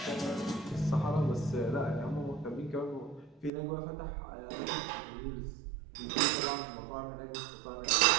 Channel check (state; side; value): drops out; left; at 3.5 s